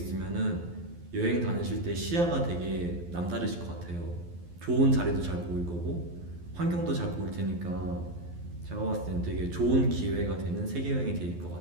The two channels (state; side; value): late; left; 12 ms